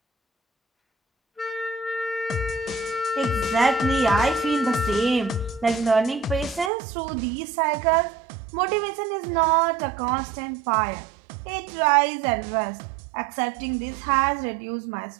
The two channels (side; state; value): left; drops out; at 6.7 s